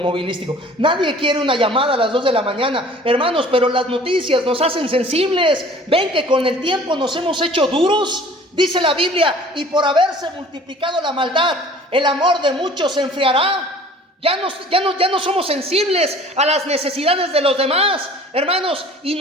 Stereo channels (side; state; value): both; normal; correlation 0.49